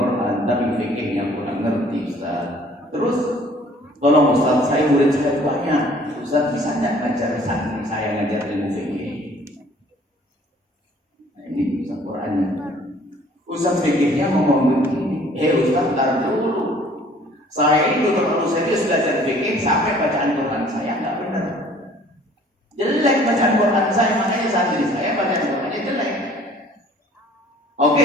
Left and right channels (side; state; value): both; normal; correlation 0.55